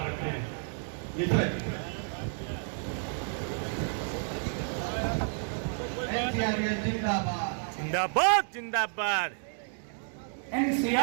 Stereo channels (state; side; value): silent; left; 57 dB below the other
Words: रखें। मिश्रा जी। NCRS जिंदाबाद। जिंदाबाद, जिंदाबाद.